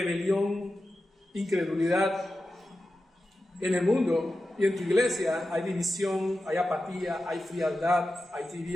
incredulidad. En el mundo y en tu iglesia hay división, hay apatía, hay frialdad, hay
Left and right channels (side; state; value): both; normal; correlation 0.92